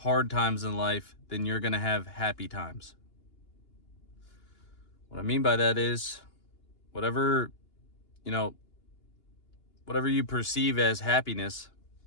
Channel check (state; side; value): late; right; 2.8 ms